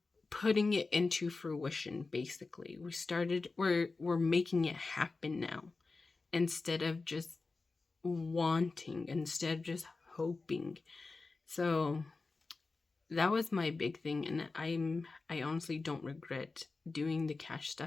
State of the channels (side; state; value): right; quieter; 3.9 dB